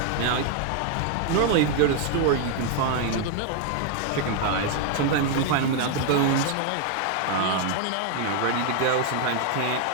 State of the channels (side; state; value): both; different; correlation 0.00